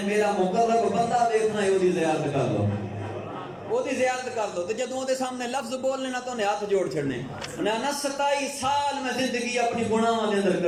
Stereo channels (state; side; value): identical; both; correlation 1.00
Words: میرا مقرب بندہ دیکھنا ہے وہ دی زیارت کر لو وہ دی زیارت کر لو، تے جدوں دے سامنے لفظ بولنے نا تو انہیں ہاتھ جوڑ چھڑنے. انہیں نا 27 سال میں زندگی اپنی گناہاں دے اندر